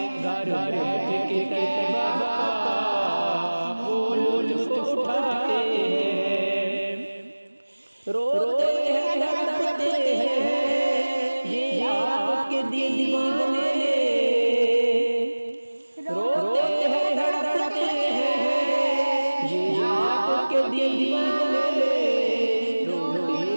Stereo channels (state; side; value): inverted; both; correlation -1.00